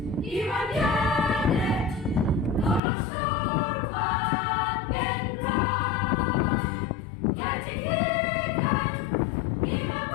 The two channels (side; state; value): right; drops out; at 2.8 s